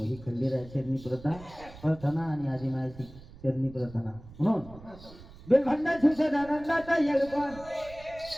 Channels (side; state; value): right; noise; rumble, 19 dB below the sound